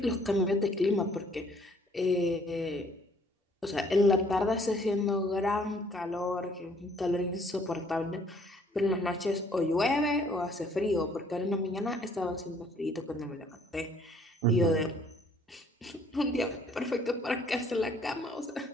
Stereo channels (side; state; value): both; normal; correlation 0.61